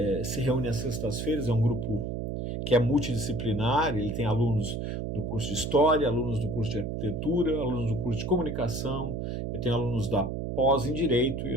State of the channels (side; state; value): right; noise; hum, 3 dB below the sound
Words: se reúne às sextas-feiras, é um grupo que é multidisciplinar, ele tem alunos do curso de História, alunos do curso de Arquitetura, alunos do curso de Comunicação, eu tenho alunos da pós em Direito e